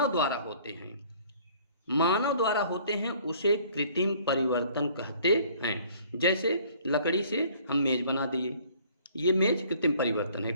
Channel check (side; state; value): both; inverted; correlation -0.55